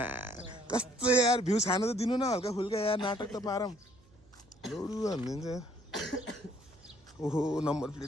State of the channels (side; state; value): right; noise; hum, 28 dB below the sound